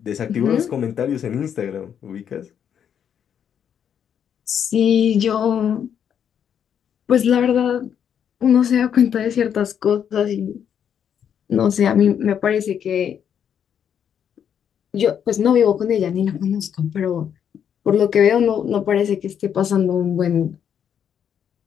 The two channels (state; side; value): quieter; right; 8.5 dB